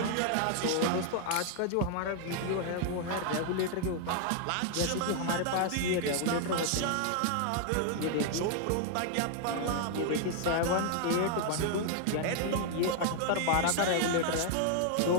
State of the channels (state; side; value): different; both; correlation 0.00